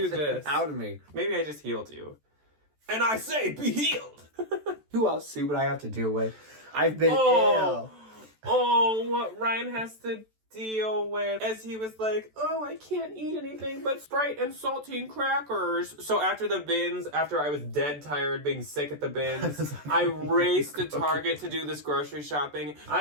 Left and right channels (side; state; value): left; late; 14 ms